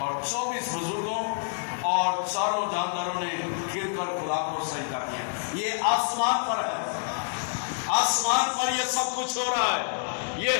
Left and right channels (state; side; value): silent; right; digital silence